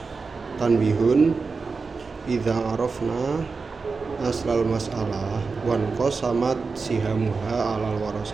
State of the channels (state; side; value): quieter; left; 4.5 dB